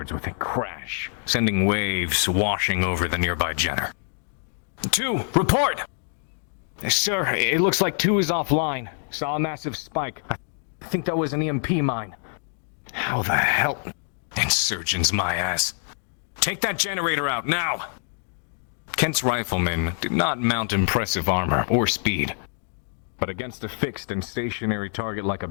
with a crash, sending waves washing over the nearby Jenner. 2, report! Sir, it looks like 2 is offline. Saw a massive spike. I think that was an EMP mine. How the hell? Insurgents, my ass. Take that generator out, now! Kent's riflemen did not mount impressive armor or speed, but against a fixed and stationary target like a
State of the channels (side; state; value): right; silent; 62 dB below the other